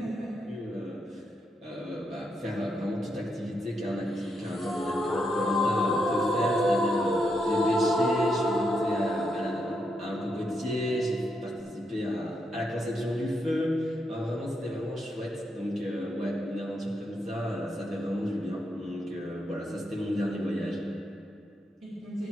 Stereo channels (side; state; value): both; normal; correlation 0.81